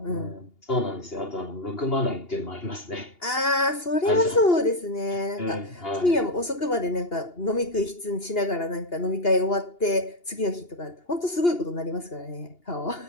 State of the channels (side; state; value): right; late; 2.8 ms